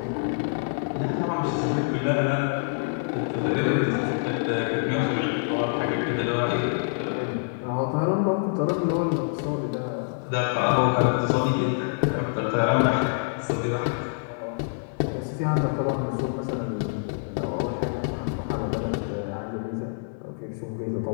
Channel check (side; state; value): right; silent; digital silence